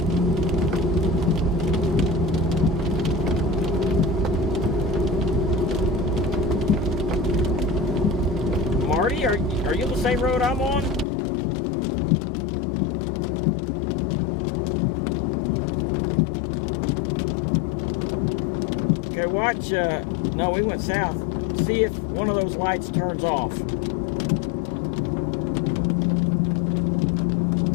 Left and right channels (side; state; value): right; drops out; at 11.1 s